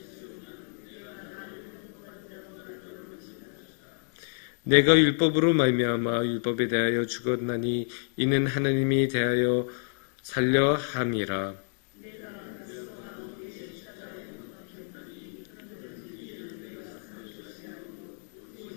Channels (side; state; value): right; silent; 58 dB below the other